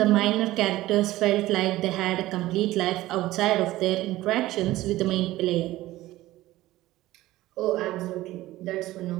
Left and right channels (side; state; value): left; quieter; 16.6 dB